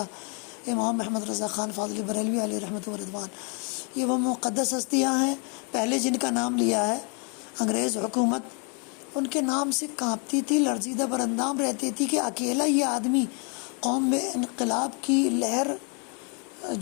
امام محمد رضا خان فاضلی بریلوی علیہ رحمۃ و رضوان، یہ وہ مقدس ہستیاں ہیں پہلے جن کا نام لیا ہے۔ انگریز حکومت ان کے نام سے کانپتی تھی، لرزیدہ براندام رہتی تھی کہ اکیلا یہ آدمی قوم میں انقلاب کی لہر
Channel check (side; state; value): right; quieter; 36.5 dB